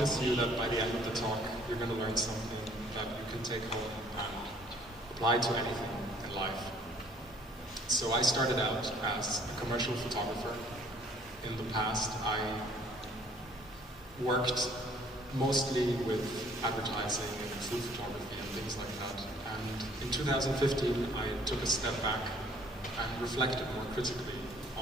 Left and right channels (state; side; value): normal; both; correlation 0.59